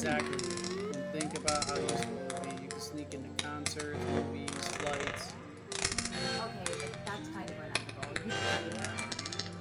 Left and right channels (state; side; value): identical; both; correlation 1.00